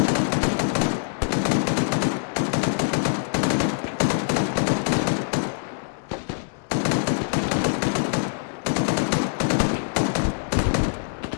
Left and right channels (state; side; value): silent; right; 61 dB below the other